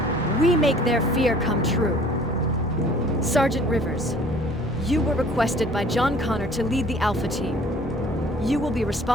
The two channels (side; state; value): both; normal; correlation 0.52